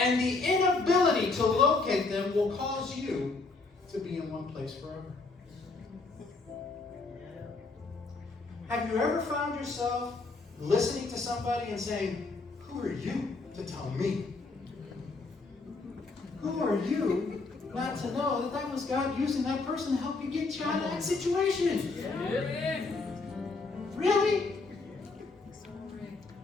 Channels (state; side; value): quieter; right; 3.8 dB